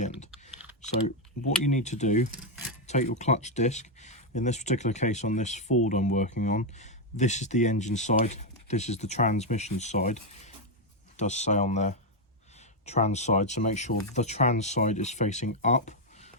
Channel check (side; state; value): both; normal; correlation 0.02